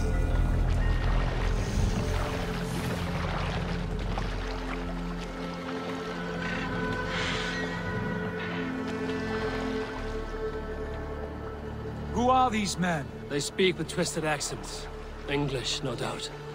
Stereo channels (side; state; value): both; identical; correlation 1.00